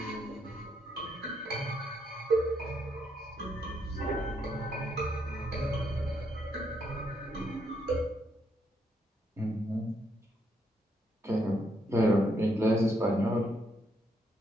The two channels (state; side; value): normal; both; correlation 0.75